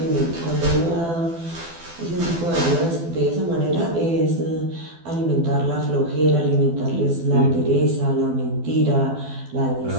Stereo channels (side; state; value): left; late; 12 ms